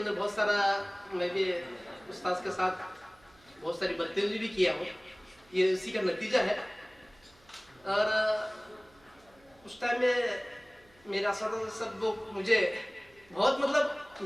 بہت سارا، میں بھی استاذ کے ساتھ بہت ساری بدتمیزی بھی کیا ہوں، یہ اسی کا نتیجہ ہے. اور اس ٹائم میں میرے اساتذہ سب لوگ مجھے بہت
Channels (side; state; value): right; noise; hum, 30 dB below the sound